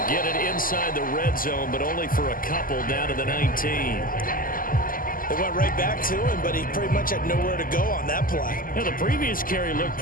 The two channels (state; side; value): late; right; 0.41 ms